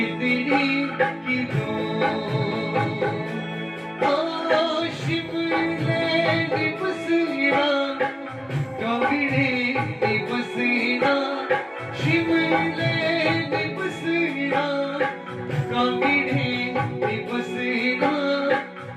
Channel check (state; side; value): identical; both; correlation 1.00